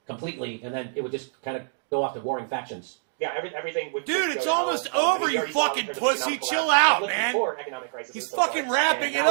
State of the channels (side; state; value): left; silent; digital silence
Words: completely, and then it would just kind of go off to warring factions. Yeah, everything would. Dude, it's almost over, you fucking pussy. Chill out, man. He's fucking wrapping it